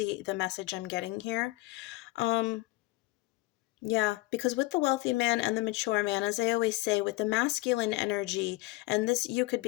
message I'm getting here. um yeah, because with the wealthy man and the mature man, as I always say, with the masculine energy, and this, you could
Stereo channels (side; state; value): right; quieter; 20.5 dB